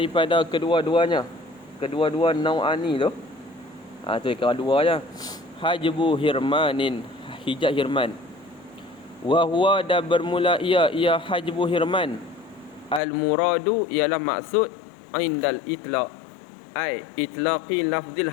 kedua-duanya. Kedua-dua naw'ani tu. Tu kira dua je. Hajbu hirmanin, hijab hirman. Wa huwa, dan bermula ia hajbu hirman. Al-muradu, ialah maksud indal itlaq, ai itlaqi lafzil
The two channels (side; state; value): right; drops out; at 13.0 s